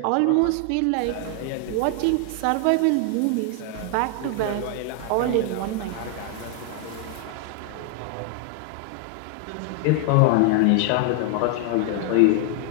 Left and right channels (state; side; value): different; both; correlation 0.00